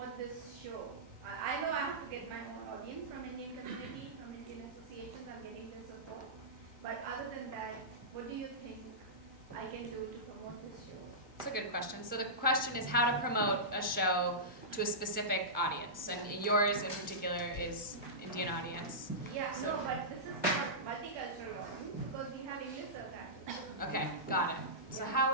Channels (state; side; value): normal; both; correlation -0.16